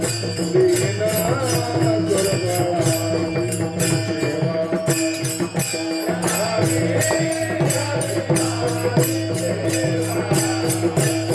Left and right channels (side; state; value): both; identical; correlation 1.00